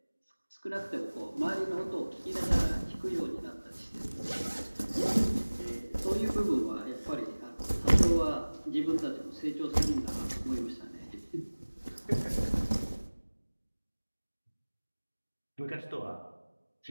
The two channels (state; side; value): inverted; both; correlation -1.00